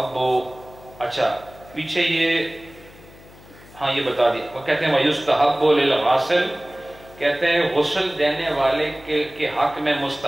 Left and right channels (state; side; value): noise; left; hum, 22 dB below the sound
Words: اچھا پیچھے یہ ہاں یہ بتا دیا، وہ کہتے ہیں وَيُسْتَحَبُّ لِلْغَاسِلِ، کہتے ہیں غسل دینے والے کے حق میں